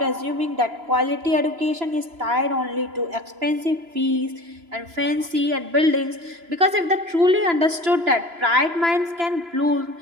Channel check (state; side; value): late; left; 3.0 ms